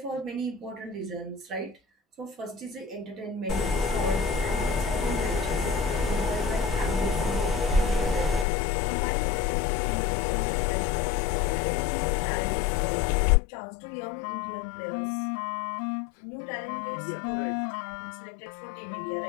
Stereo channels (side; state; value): right; drops out; at 8.5 s